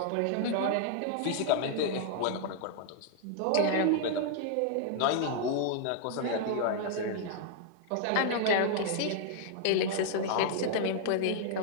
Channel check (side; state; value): both; different; correlation -0.01